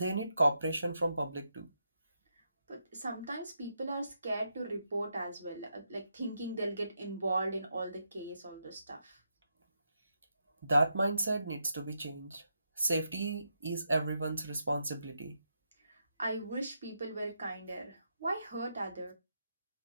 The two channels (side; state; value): both; inverted; correlation -0.83